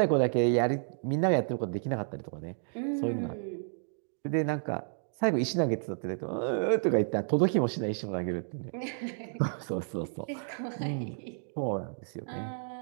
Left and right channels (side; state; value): left; silent; digital silence